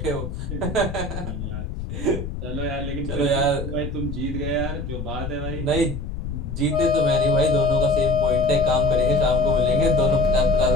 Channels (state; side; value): noise; left; rumble, 6 dB below the sound